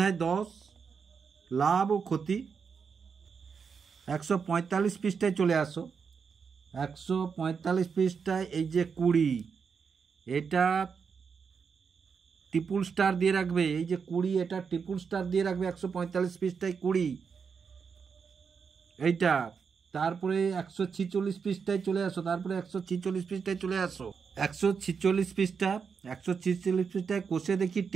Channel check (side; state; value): left; quieter; 6.0 dB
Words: 10 লাভ ও ক্ষতি। 145 পৃষ্ঠায় চলে আসো। 145 পৃষ্ঠায় এই যে 20, এটা ট্রিপল স্টার দিয়ে রাখবে। এই যে 20, এটা ট্রিপল স্টার দিয়ে রাখবে 145 পৃষ্ঠায় 20 এইটা। তারপরে 146 পৃষ্ঠায় চলে আসো। তারপরে 146 পৃষ্ঠায় চলে আসো। 146 পৃষ্ঠা, 146 পৃষ্ঠায় কোষে দেখি